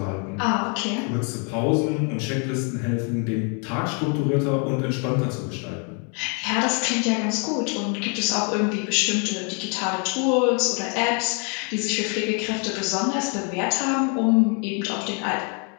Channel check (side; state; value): right; quieter; 37.5 dB